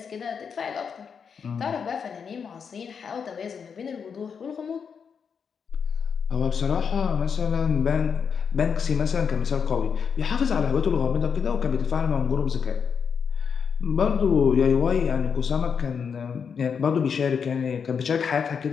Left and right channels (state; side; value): quieter; right; 6.5 dB